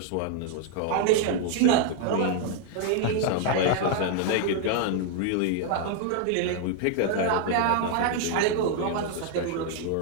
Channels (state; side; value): different; both; correlation 0.00